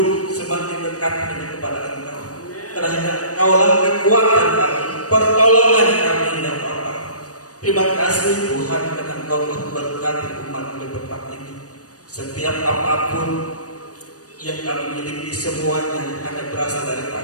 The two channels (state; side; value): late; right; 0.67 ms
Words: semakin dekat dengan kepada Engkau. Karena Engkaulah kekuatan kami, pertolongan kami ya Bapa. Terima kasih Tuhan karena Engkau memberkati umat di tempat ini. Setiap apapun yang kami miliki semuanya hanya berasal